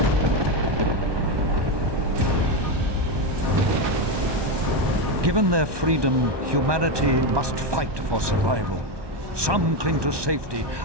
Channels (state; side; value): late; left; 1.2 ms